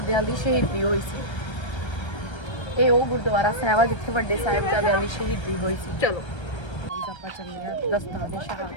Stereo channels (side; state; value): right; late; 1.3 ms